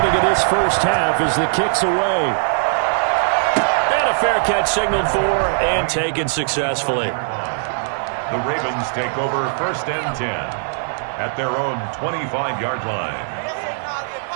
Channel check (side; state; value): left; silent; digital silence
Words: in this first half as the kick's away. And a fair catch signaled for and taken successfully. The Ravens take over 1st and 10 at their own 25-yard line.